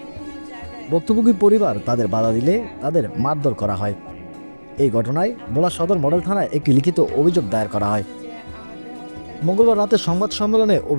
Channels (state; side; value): inverted; both; correlation -1.00